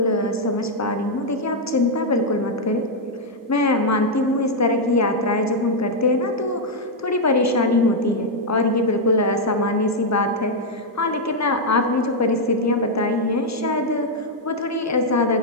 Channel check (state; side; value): normal; both; correlation -0.02